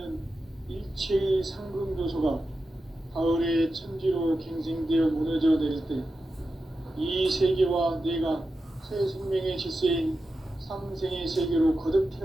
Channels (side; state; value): both; normal; correlation 0.91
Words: 일체의 상금 요소가 가을의 천지로 갱생되어 무너져 내릴 때 이 세계와 내가 새 생명의 질서인 상생의 세계로 거듭